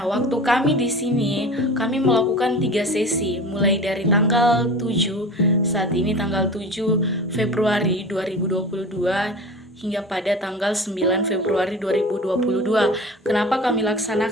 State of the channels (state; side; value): normal; both; correlation 0.35